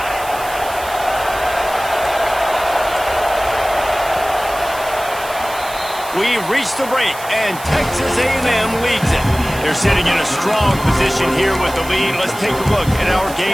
We've reached the break, and Texas A&M leads it. They're sitting in a strong position here with the lead. Let's take a look at our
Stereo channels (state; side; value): noise; right; hiss, 14 dB below the sound